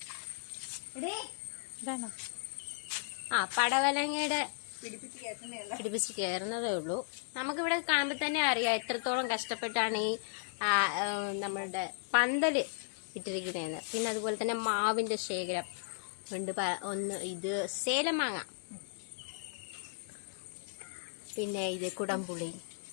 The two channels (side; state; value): right; silent; digital silence